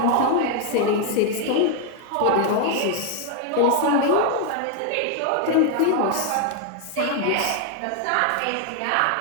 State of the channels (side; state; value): both; different; correlation 0.01